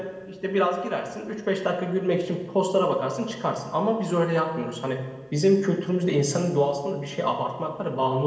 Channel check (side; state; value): both; identical; correlation 1.00